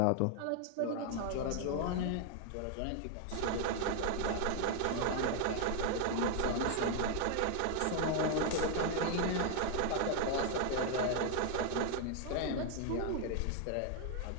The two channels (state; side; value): different; both; correlation 0.00